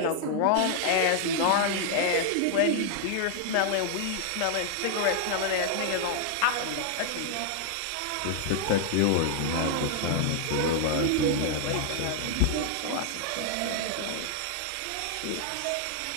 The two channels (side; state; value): both; different; correlation 0.00